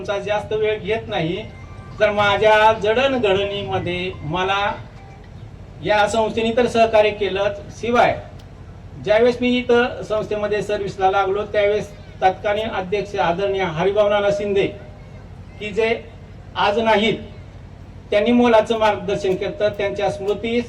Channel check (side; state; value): both; identical; correlation 1.00